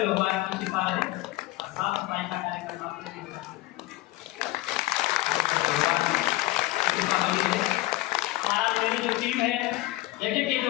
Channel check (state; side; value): quieter; right; 18.2 dB